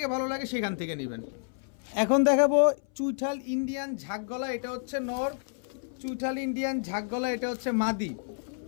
ভালো লাগে সেখান থেকে নেবেন। এখন দেখাবো চুইঠাল ইন্ডিয়ান ঝাঁকগলা, এটা হচ্ছে নর। চুইঠাল ইন্ডিয়ান ঝাঁকগলা, এটা হচ্ছে মাদি।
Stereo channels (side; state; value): right; silent; 58 dB below the other